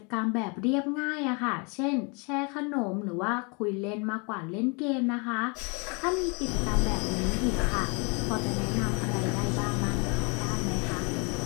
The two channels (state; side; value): quieter; right; 32.7 dB